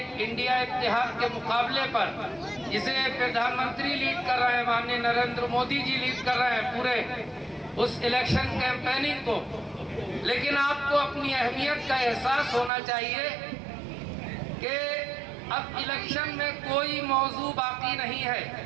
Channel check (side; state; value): left; drops out; at 12.7 s